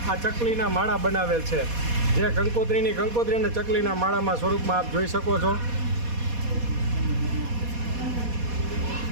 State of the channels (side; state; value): left; late; 4.2 ms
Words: આ ચકલીના માળા બનાવેલ છે, જે કંકોત્રી અને ચકલીના માળામાં સ્વરૂપમાં આપ જોઈ શકો છો।